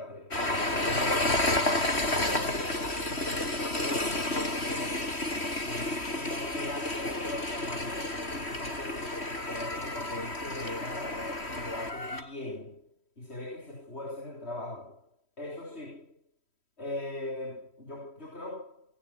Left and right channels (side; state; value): right; late; 3.1 ms